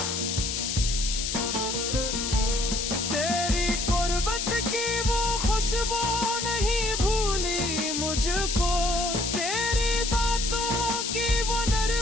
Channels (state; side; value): noise; left; hiss, 2 dB below the sound